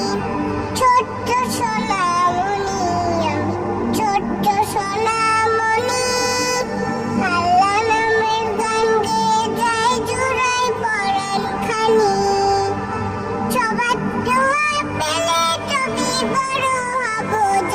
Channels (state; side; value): identical; both; correlation 1.00